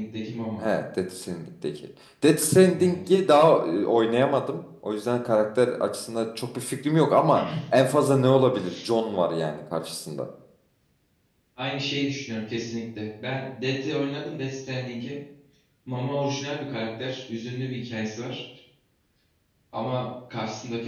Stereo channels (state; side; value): identical; both; correlation 1.00